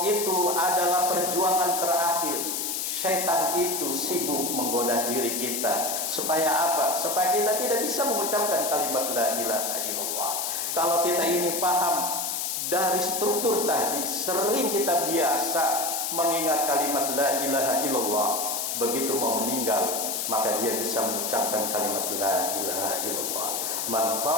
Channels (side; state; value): left; noise; hiss, 1 dB below the sound